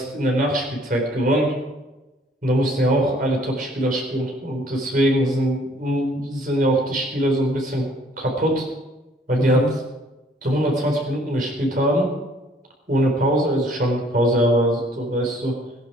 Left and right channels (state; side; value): normal; both; correlation 0.60